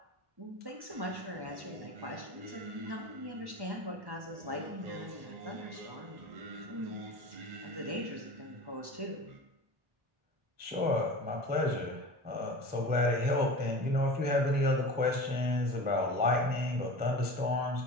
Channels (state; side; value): late; left; 1.1 ms